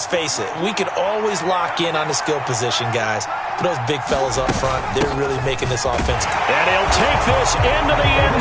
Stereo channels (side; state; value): both; identical; correlation 1.00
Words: face it, we can always lock in on the skill position, guys. But those big fellas up front, they're really making this offense. And he'll take this into the end